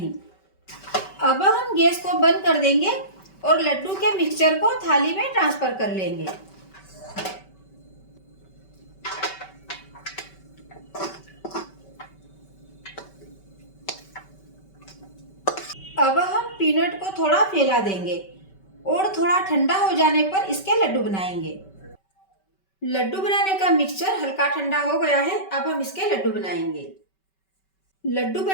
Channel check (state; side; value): late; right; 5.2 ms